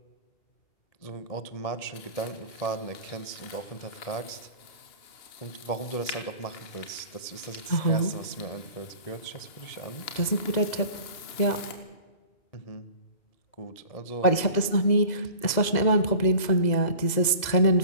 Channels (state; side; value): late; right; 2.0 ms